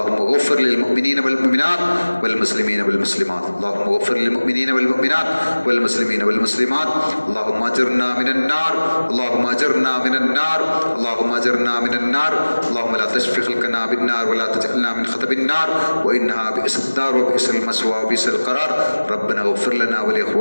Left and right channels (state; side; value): inverted; both; correlation -1.00